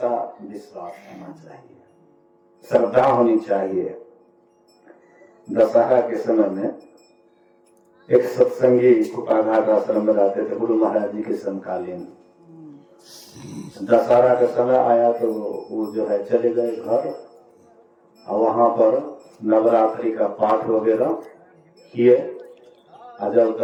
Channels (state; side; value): identical; both; correlation 1.00